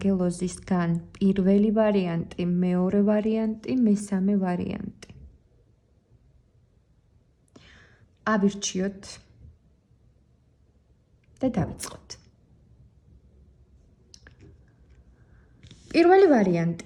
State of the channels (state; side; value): identical; both; correlation 1.00